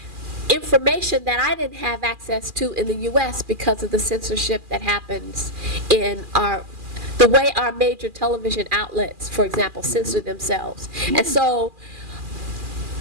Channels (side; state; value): left; late; 2.4 ms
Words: information that I didn't have access to in the U.S. because of the censorship that happens in the way our major television outlets, for example, censor themselves. And so